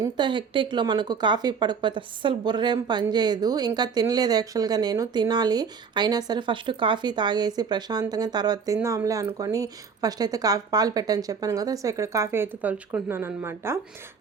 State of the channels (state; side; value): quieter; left; 5.9 dB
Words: హెక్టిక్లో మనకు కాఫీ పడకపోతే అస్సలు బుర్రేం పనిచేయదు. ఇంకా తినలేదు యాక్చువల్గా, నేను తినాలి. అయినా సరే ఫస్ట్ కాఫీ తాగేసి ప్రశాంతంగా తర్వాత తిందాంలే అనుకొని ఫస్ట్ అయితే పాలు పెట్టని చెప్పాను కదా. సో ఇక్కడ కాఫీ అయితే తలుచుకుంటున్నాను అనమాట.